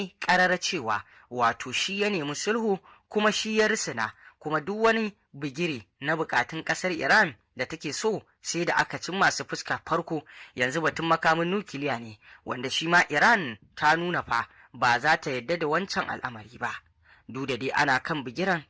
ƙarara cewa wato shi ya nemi sulhu, kuma shi ya risina, kuma duk wani bigire na bukatun ƙasar Iran da take so sai da aka cin masu fuska farko. Yanzu batun makamin nukiliya ne, wanda shi ma Iran ta nuna fa ba za ta yadda da wancan al'amari ba. Duk da dai ana kan bigiran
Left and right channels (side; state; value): both; identical; correlation 1.00